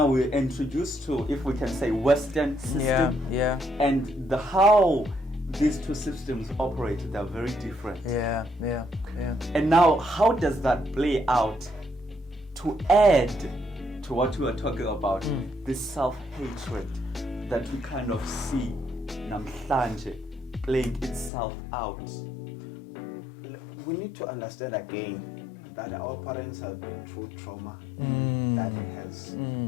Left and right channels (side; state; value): right; drops out; at 21.3 s